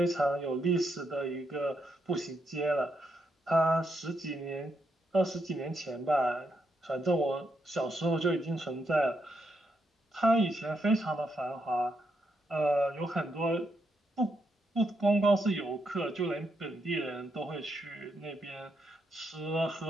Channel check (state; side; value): normal; both; correlation 0.80